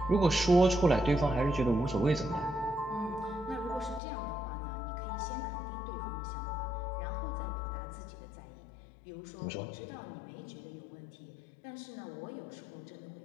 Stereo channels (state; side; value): drops out; right; at 4.0 s